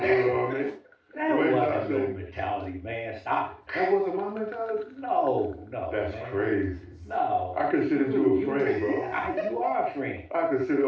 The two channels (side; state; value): both; identical; correlation 1.00